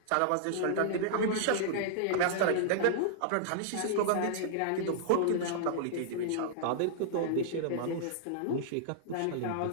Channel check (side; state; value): both; different; correlation -0.01